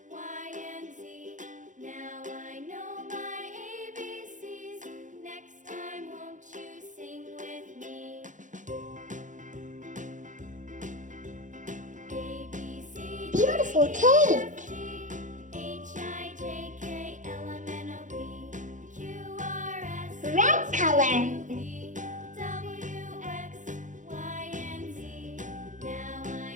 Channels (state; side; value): late; left; 0.37 ms